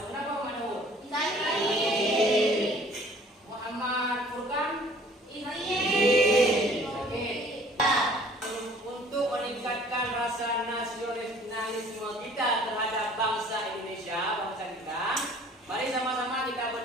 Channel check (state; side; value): normal; both; correlation 0.53